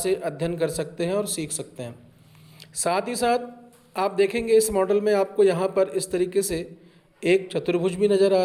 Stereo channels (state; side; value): identical; both; correlation 1.00